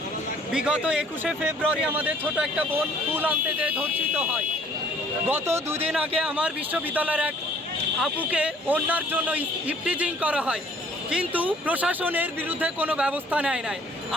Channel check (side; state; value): both; normal; correlation 0.57